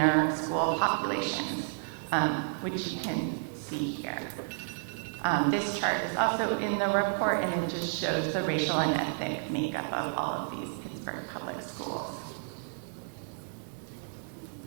school populations, which you can see here. This chart is also in the report, and it just shows the racial and ethnic makeup of all of these Pittsburgh public schools.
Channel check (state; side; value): silent; left; digital silence